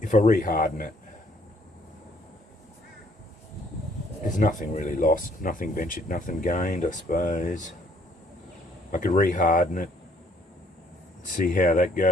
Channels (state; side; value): normal; both; correlation 0.64